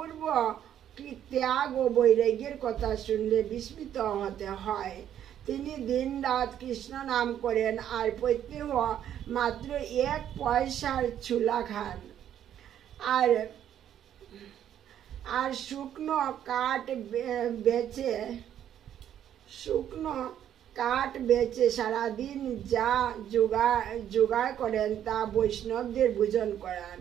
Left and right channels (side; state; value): left; quieter; 10.4 dB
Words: ত্যাগ ও বৈরাগ্যের কথা শুনলে বিস্মিত হতে হয়। তিনি দিন রাত কৃষ্ণ নাম করেন আর প্রত্যেক মাত্র 1 পয়সার ছুলা খান আর শুকনো কাঠ বেচে সারাদিন যা জোগাড় করেন তা বৈষ্ণবদের ভোজন করান।